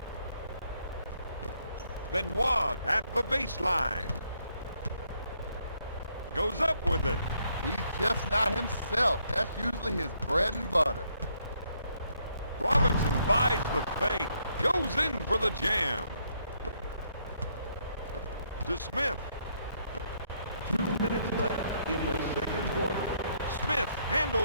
Benoit at the baseline. Goes up with it. He's just not himself. That's usually his bread and butter. Robinson buys the fake. Goes in for the jam. To Smith. 2 minutes left in the second quarter. Smith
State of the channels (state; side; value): inverted; both; correlation -0.72